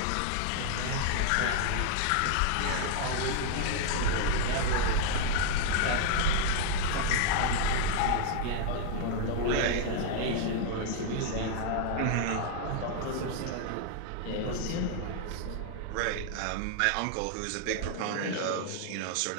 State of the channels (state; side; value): different; both; correlation 0.00